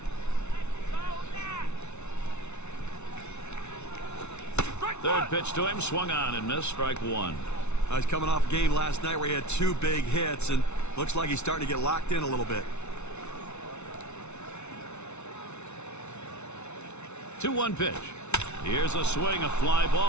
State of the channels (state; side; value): late; right; 0.82 ms